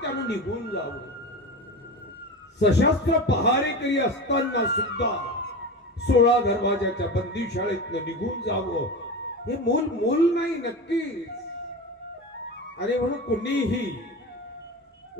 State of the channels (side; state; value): both; normal; correlation 0.26